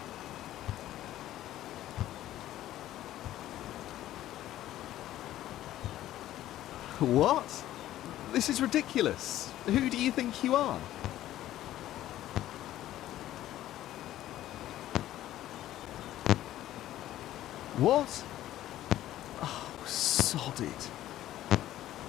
What? This is ridiculous. Who do you think you are? What? Oh, sod it.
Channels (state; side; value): quieter; right; 13.6 dB